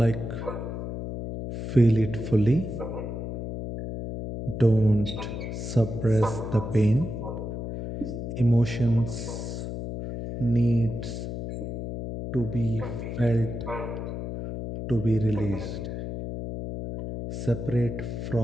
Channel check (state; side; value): noise; left; hum, 6 dB below the sound